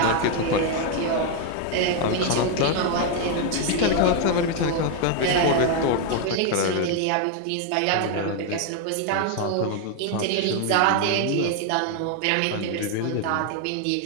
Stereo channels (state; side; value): different; both; correlation 0.01